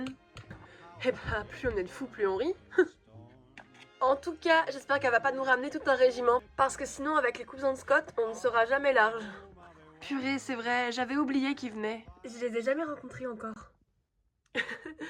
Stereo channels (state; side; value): identical; both; correlation 1.00